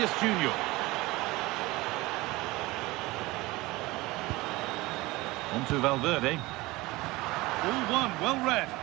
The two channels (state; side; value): quieter; left; 20.8 dB